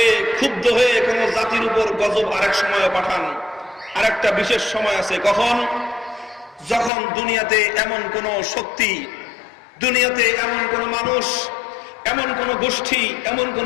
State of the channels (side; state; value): right; drops out; at 6.9 s